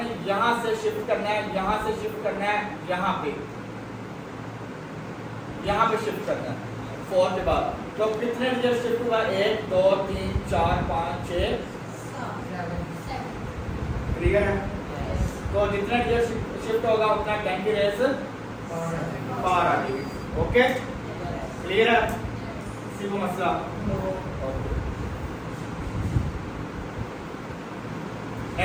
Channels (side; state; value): both; identical; correlation 1.00